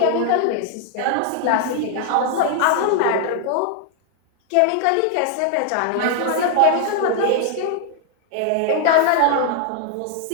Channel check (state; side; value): different; both; correlation 0.00